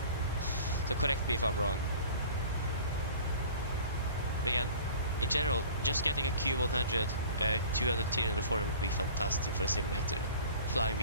So correct me if I'm wrong. But again, in general, just getting a Q100, 200 tier in the forum would be fantastic for a simulator. Flying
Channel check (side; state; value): both; inverted; correlation -0.44